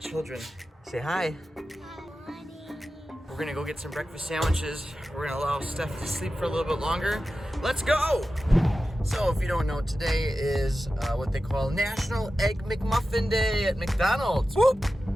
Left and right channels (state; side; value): normal; both; correlation 0.93